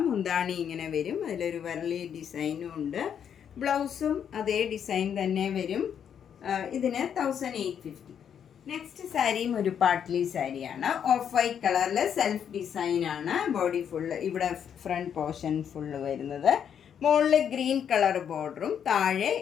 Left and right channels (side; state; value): right; quieter; 8.4 dB